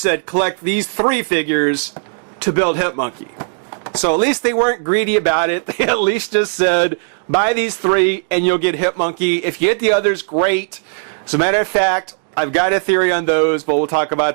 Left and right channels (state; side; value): silent; left; digital silence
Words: said collect these 3 figures to build Hip Monkey. So at least they weren't greedy about it. They at least just said buy these 3 and you'll get Hip Monkey. If you get the others, great. As a matter of fact, I've got a theory on those, but we'll talk